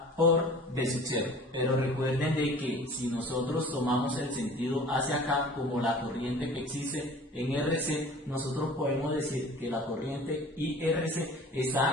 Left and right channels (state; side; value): normal; both; correlation 0.45